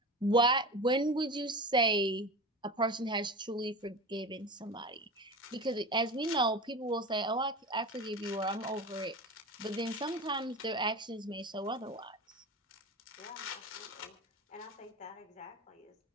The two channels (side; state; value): both; normal; correlation 0.29